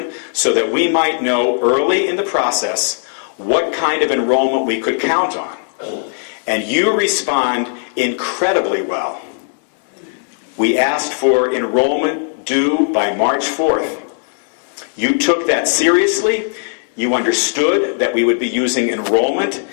so that we might know early in the process what kind of enrollment we could count on. And you respond incredibly well. We asked for enrollment due by March 4th. You took that seriously. You understood that we would be using enrollment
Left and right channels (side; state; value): right; silent; digital silence